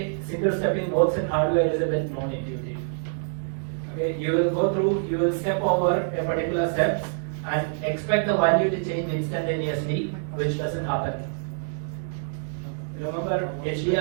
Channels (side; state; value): left; silent; digital silence